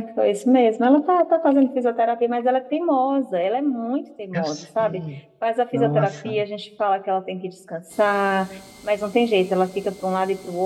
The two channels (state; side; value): identical; both; correlation 1.00